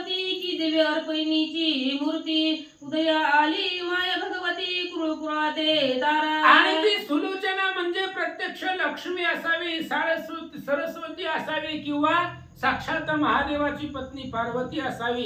की दिव्य अर्पणीची मूर्ती उदया आली माया भगवती कुळकुळाते तारा. आणि ती सुलोचना म्हणजे प्रत्यक्ष लक्ष्मी असावी, सरस्वती असावी किंवा साक्षात महादेवाची पत्नी पार्वती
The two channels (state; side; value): identical; both; correlation 1.00